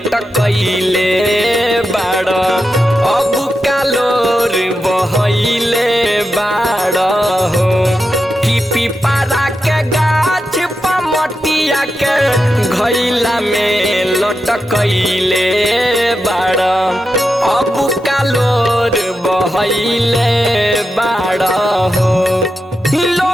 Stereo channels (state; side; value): normal; both; correlation 0.88